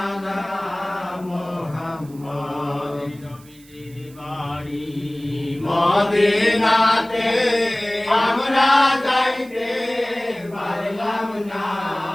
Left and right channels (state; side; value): noise; right; hiss, 25 dB below the sound